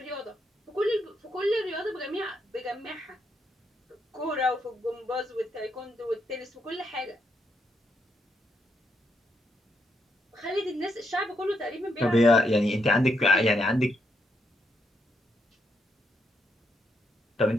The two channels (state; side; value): normal; both; correlation 0.78